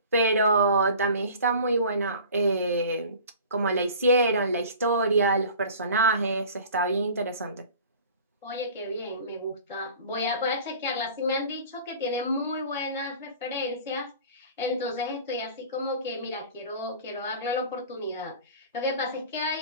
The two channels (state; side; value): inverted; both; correlation -0.43